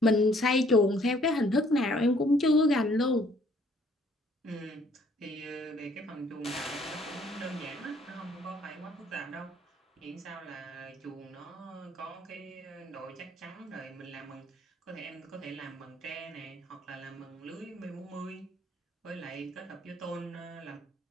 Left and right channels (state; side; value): normal; both; correlation 0.61